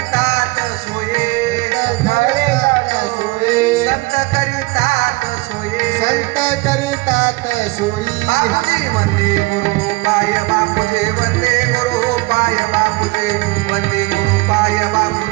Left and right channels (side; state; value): left; quieter; 23.3 dB